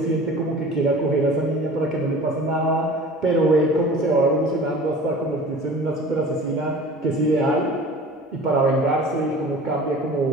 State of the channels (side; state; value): both; normal; correlation 0.42